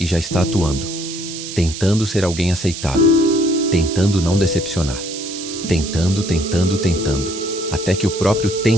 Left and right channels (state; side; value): noise; right; hiss, 9 dB below the sound